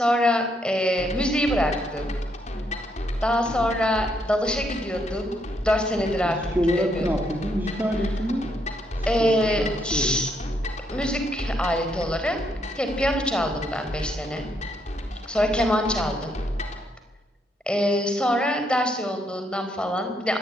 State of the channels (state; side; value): normal; both; correlation 0.75